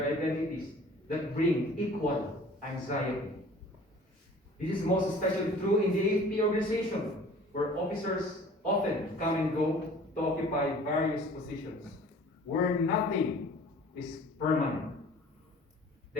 identities that bring equal anxiety. This is most especially true in the AFP organization, where officers often come and go to occupy various positions, where nothing is permanent.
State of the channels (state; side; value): normal; both; correlation 0.48